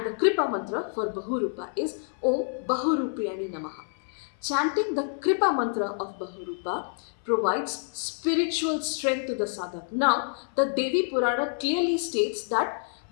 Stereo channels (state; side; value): silent; right; 57 dB below the other